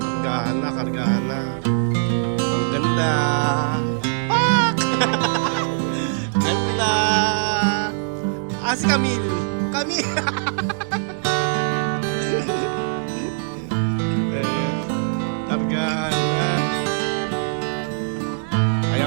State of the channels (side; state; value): left; silent; digital silence